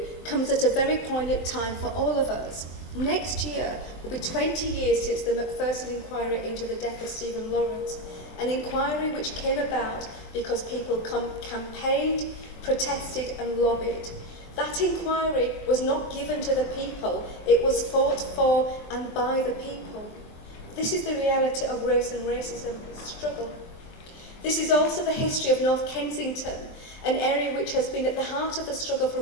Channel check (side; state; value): right; late; 23 ms